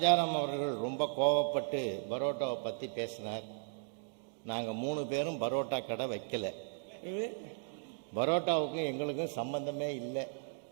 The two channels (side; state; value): left; silent; digital silence